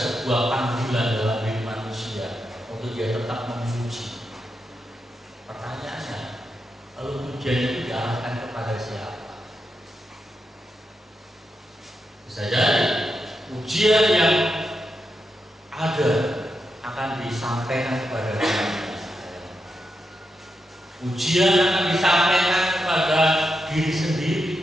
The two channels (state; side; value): normal; both; correlation 0.86